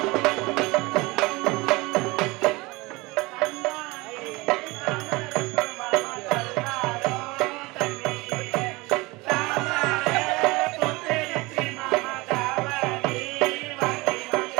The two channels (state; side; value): quieter; left; 23.2 dB